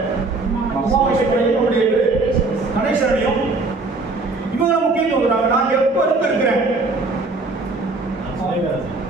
உமாமேஸ்வரையும் நம்முடைய கணேசனையும் இவங்க முக்கியத்துவம் கொடுக்குறாங்க. நான் எப்ப இருக்கிறேன்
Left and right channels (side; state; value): left; quieter; 3.5 dB